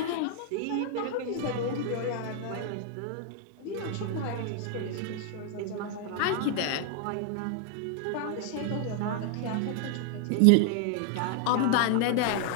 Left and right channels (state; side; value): different; both; correlation 0.00